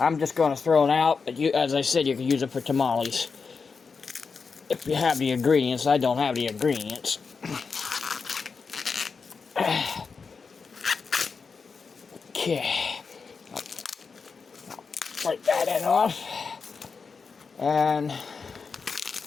just going to throw it out, but as I said, you can use it for tamales. If you have the ingredients. I don't have the ingredients. Okay. I'll break that end off. And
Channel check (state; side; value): quieter; right; 5.1 dB